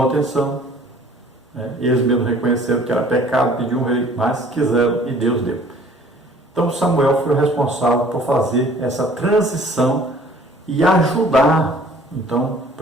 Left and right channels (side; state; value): both; normal; correlation 0.53